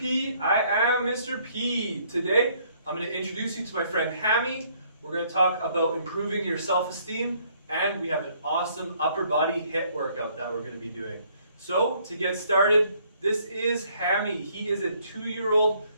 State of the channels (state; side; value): inverted; both; correlation -0.65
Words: I am Mr. P. Today, I'm going to introduce you to my friend Hammy. We're going to talk about improving your self-esteem, and we have an awesome upper body HIIT workout that we're going to be doing. So, to get started, this is Hammy. He is a 2-year-old